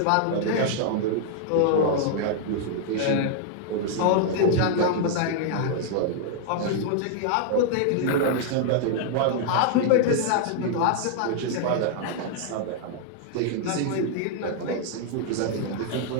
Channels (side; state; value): both; different; correlation 0.00